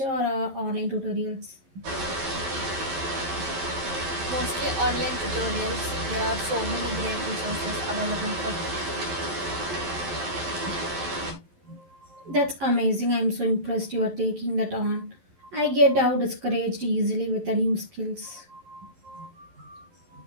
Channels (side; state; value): left; late; 11 ms